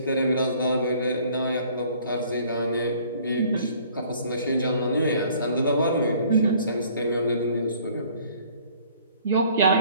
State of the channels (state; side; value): inverted; both; correlation -0.56